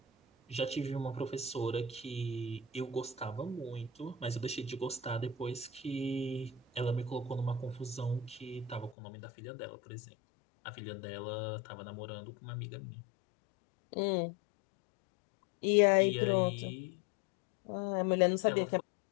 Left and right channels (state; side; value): drops out; right; at 9.0 s